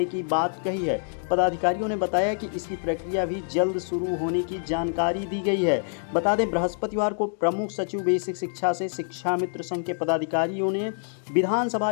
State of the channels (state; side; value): silent; right; digital silence